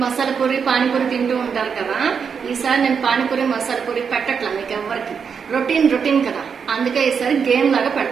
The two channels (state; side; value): quieter; left; 6.4 dB